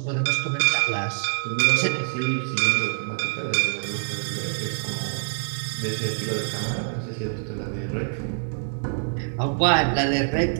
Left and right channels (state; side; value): silent; left; digital silence